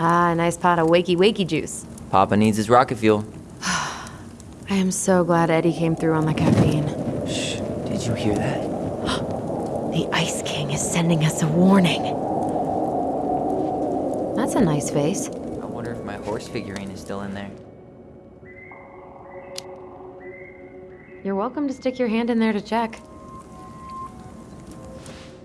a nice pot of wakey juice. Papa needs his rocket fuel. I am so glad Eddie came through on the caffeine. Shh, did you hear that? The Ice King is sending us a warning. That's a nice face. I wonder if my horse figurine is still in there. You're welcome to stick your hand in there to check.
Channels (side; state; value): both; identical; correlation 1.00